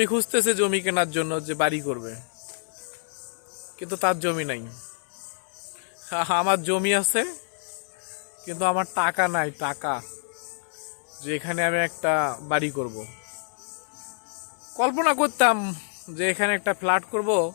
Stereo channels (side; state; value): right; silent; 60 dB below the other